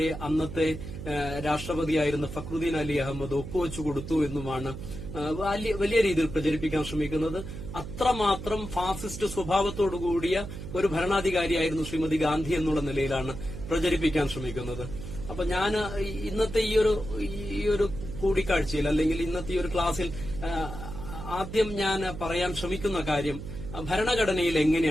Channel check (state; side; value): noise; right; hum, 9 dB below the sound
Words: അന്നത്തെ രാഷ്ട്രപതിയായിരുന്ന ഫക്രുദ്ദീൻ അലി അഹമ്മദ് ഒപ്പുവെച്ചു കൊടുത്തു എന്നുമാണ് വലിയ രീതിയിൽ പ്രചരിപ്പിക്കാൻ ശ്രമിക്കുന്നത്. അത്രമാത്രം ഫാസിസ്റ്റ് സ്വഭാവത്തോടുകൂടിയ ഒരു ഭരണാധികാരിയായിരുന്നു ശ്രീമതി ഗാന്ധി എന്നുള്ള നിലയിലാണ് പ്രചരിപ്പിക്കാൻ ശ്രമിക്കുന്നത്. അപ്പൊ ഞാൻ ഇന്നത്തെ ഈ ഒരു കൂടിക്കാഴ്ചയിൽ അല്ലെങ്കിൽ ഇന്നത്തെ ഈ ഒരു ക്ലാസ്സിൽ ആദ്യം ഞാൻ പറയാൻ ശ്രമിക്കുന്ന കാര്യം, ഭരണഘടനയിൽ